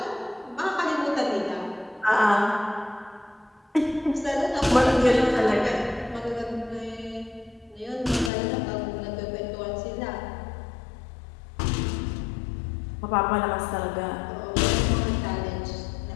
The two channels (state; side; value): drops out; right; at 8.3 s